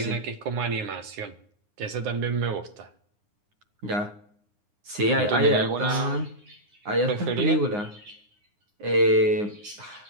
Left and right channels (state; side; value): late; left; 9.7 ms